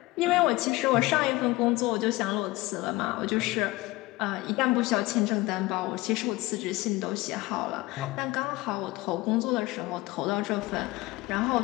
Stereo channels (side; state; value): right; quieter; 20.3 dB